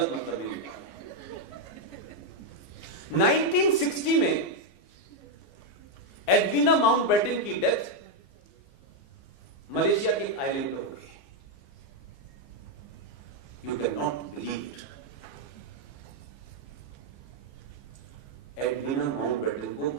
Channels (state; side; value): late; right; 14 ms